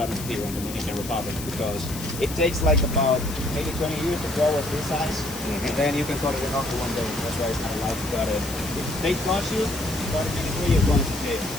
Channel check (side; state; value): left; noise; hiss, 11 dB below the sound